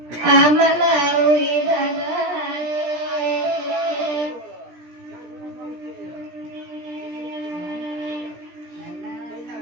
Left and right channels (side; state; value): left; late; 17 ms